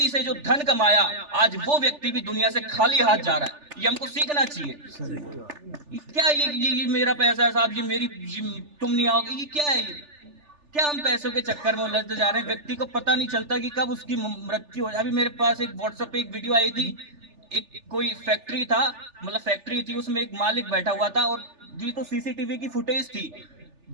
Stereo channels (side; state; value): left; late; 3.4 ms